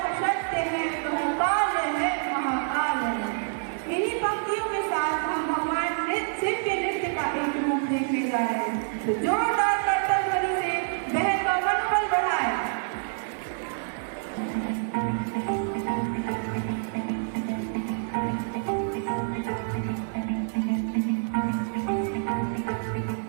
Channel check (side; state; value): left; silent; digital silence